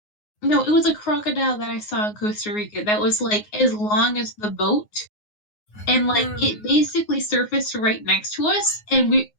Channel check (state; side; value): late; right; 9.5 ms